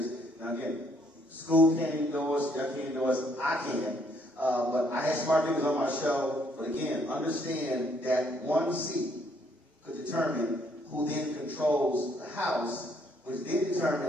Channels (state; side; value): normal; both; correlation 0.68